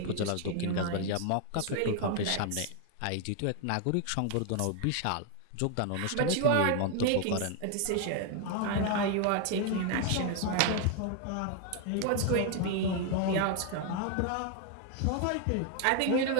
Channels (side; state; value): both; different; correlation 0.01